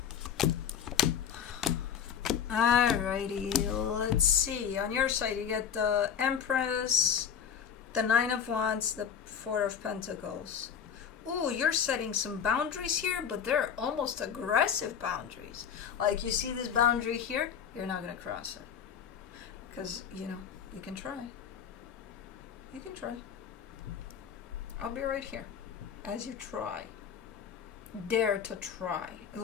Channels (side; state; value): right; quieter; 8.0 dB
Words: Alrighty, let's see. On your side, you get the Empress, The Nine of Wands, the Four of Pentacles. Ooh, you're setting some boundaries here, but they're almost aggressive boundaries. Like, you see this boundary here? You're not going to cross it. Because, you know, you can try. You can try. I'll be right here as you try. Dare to try.